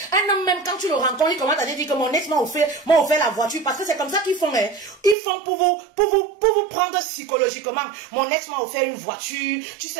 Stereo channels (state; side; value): drops out; left; at 5.2 s